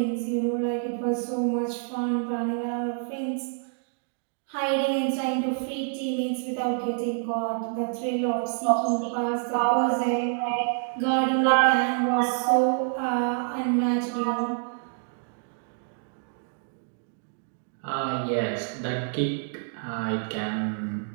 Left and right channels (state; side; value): silent; left; 60 dB below the other